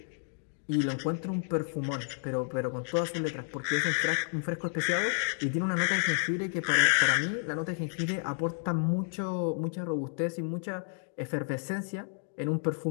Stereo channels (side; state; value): right; silent; 57 dB below the other